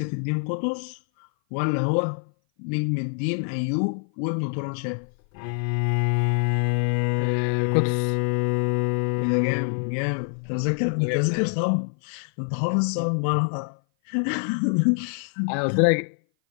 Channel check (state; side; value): silent; right; 57 dB below the other